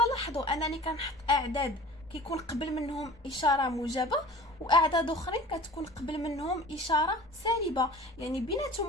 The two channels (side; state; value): both; normal; correlation 0.42